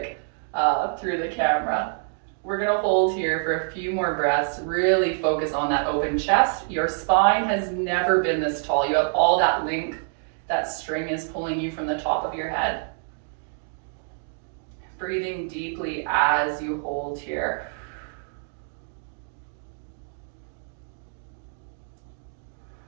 through the camera. We're gonna hold here for a few more breaths, really focus on that open chest. Your spine has never been this tall. You have all that length, that string is pulling you from the top of your head. Breathing deeply as you hold here.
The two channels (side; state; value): left; silent; digital silence